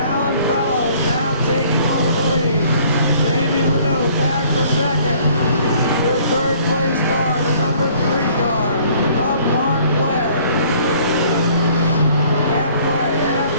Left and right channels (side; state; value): both; inverted; correlation -0.57